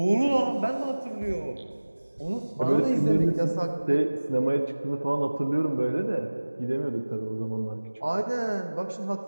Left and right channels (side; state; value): both; inverted; correlation -1.00